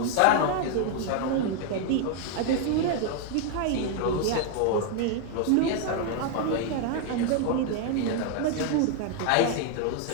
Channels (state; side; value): different; both; correlation 0.00